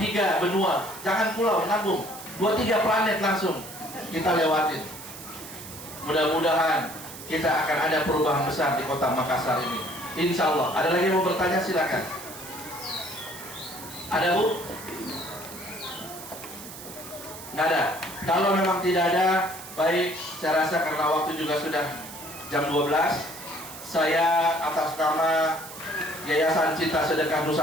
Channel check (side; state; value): right; noise; hiss, 13 dB below the sound